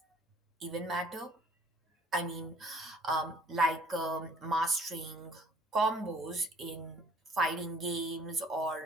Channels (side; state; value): both; normal; correlation 0.56